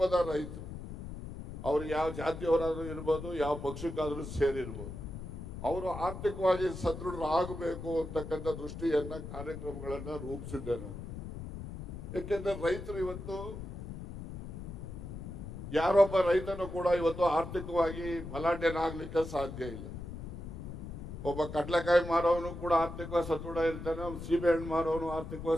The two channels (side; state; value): left; noise; rumble, 9 dB below the sound